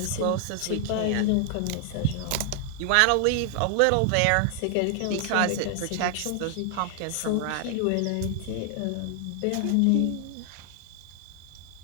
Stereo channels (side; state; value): both; different; correlation 0.00